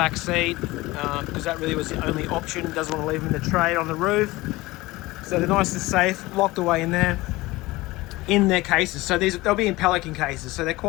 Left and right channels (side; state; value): right; quieter; 20.1 dB